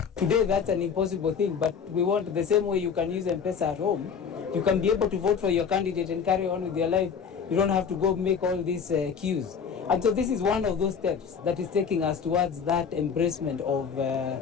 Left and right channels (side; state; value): right; quieter; 6.6 dB